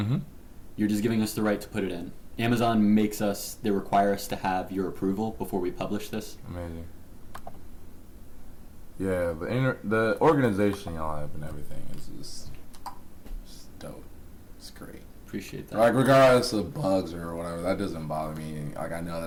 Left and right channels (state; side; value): identical; both; correlation 1.00